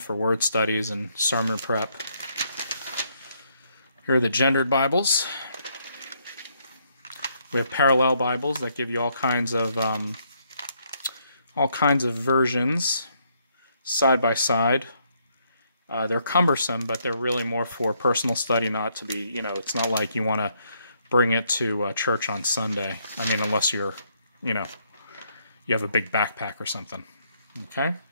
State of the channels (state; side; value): inverted; both; correlation -0.72